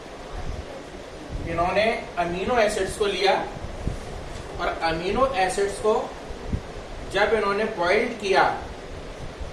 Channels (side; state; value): both; identical; correlation 1.00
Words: इन्होंने अमीनो एसिड्स को लिया और अमीनो एसिड्स को जब इन्होंने बॉइल्ड किया